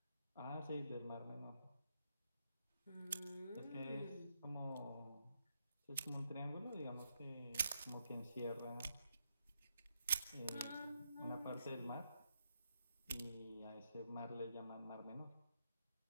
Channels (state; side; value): inverted; both; correlation -0.80